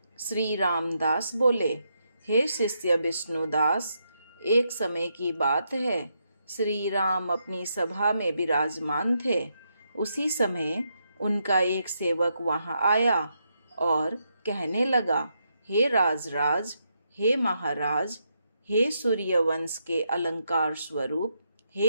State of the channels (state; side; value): inverted; both; correlation -0.80